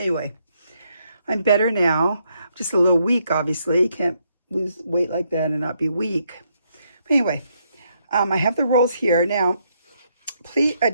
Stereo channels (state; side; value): inverted; both; correlation -0.75